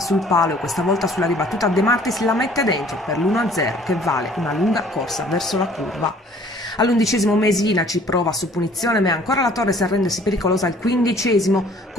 palo e questa volta sulla ribattuta De Martis la mette dentro per l'1-0 che vale una lunga corsa verso la curva. All'11° Mesina ci prova su punizione, ma è ancora la Torres a rendersi pericolosa al 15°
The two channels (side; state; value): both; normal; correlation 0.55